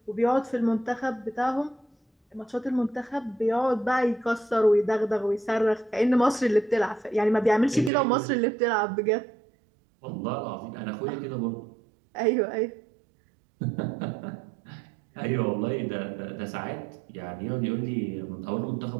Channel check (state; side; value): drops out; left; at 7.9 s